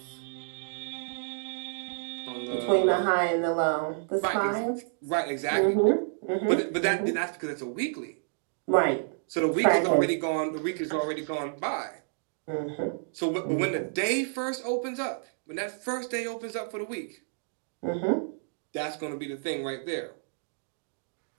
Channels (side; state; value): left; silent; digital silence